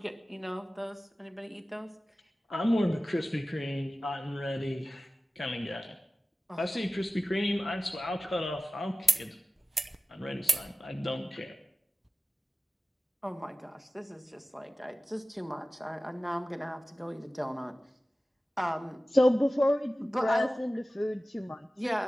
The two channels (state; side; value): normal; both; correlation 0.96